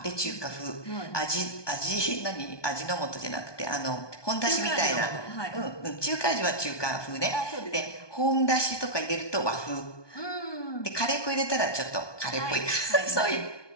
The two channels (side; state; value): right; late; 1.2 ms